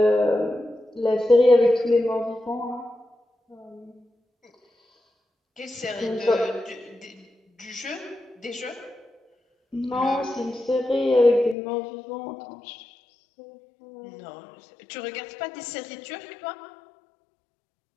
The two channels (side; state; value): right; drops out; at 11.6 s